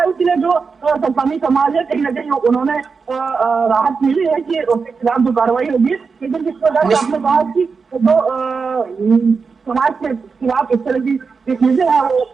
के लिए जो सतनामी समाज है कहीं ना कहीं उन्होंने राहत मिली है कि उसके खिलाफ जो कार्रवाई होगी। लेकिन जिस प्रकार से आपने कहा कि जो समाज के खिलाफ इस तरह की चीजें हैं वो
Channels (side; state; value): left; quieter; 5.1 dB